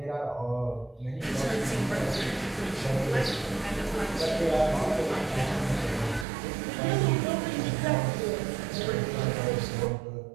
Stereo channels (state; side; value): drops out; left; at 6.2 s